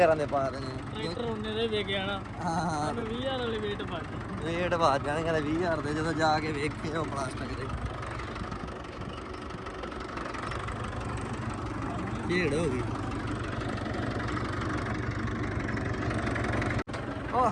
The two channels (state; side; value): identical; both; correlation 1.00